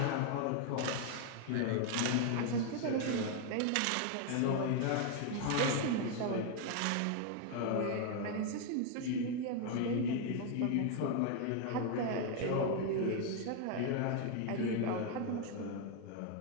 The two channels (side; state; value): both; different; correlation 0.01